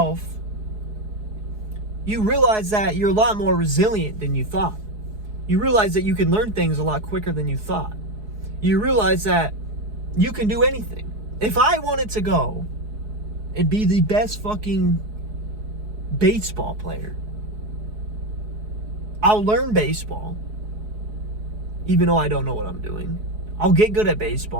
you realize that you're a lot more resilient than you thought. You realize that you can learn things a lot quicker than you thought. You realize that you can do anything. If I wanted to go and be the best fucking baseball player, I'll learn baseball, even though I don't know what I'm doing. I'll get good at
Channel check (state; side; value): late; left; 4.7 ms